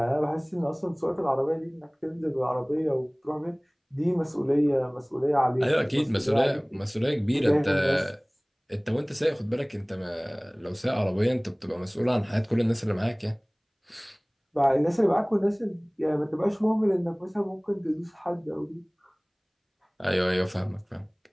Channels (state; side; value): identical; both; correlation 1.00